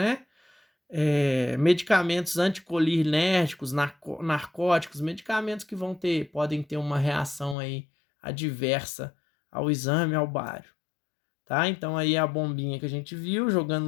Medicamentos anticolinérgicos, narcóticos, medicamentos que podem ter uma reação aí adversa ao exame, ao bário, tá? Então aí a bombinha que a gente viu,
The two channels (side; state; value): right; drops out; at 7.6 s